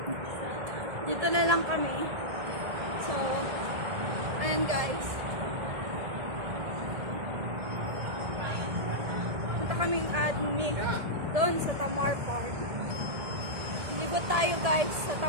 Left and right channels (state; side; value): late; left; 1.7 ms